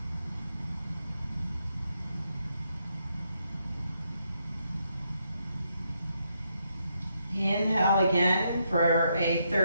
Inhale again for a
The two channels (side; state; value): both; inverted; correlation -0.79